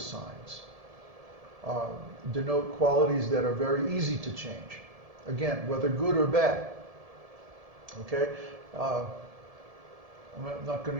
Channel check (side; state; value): left; late; 1.7 ms